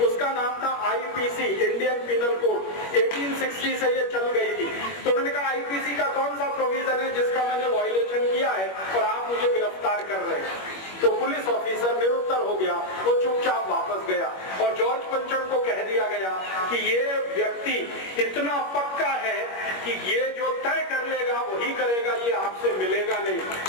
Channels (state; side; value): late; right; 21 ms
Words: उसका नाम था आईपीसी, इंडियन पिनल कोड, 1860 से ये चल गई थी। तो उन्होंने कहा आईपीसी का कौन सा प्रोविजन है जिसका मैंने वायलेशन किया है और आप मुझे गिरफ्तार कर रहे हैं। तो पुलिस ऑफिसर निरुत्तर हो गया, वो चुपचाप वापस गया और जॉर्ज पंचम को कह दिया गया कि ये व्यक्ति इतना पक्का है कि ये जो तय कर लेगा वही करेगा, ये आपसे मिलेगा नहीं।